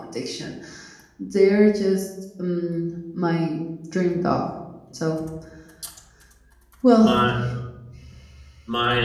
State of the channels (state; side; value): identical; both; correlation 1.00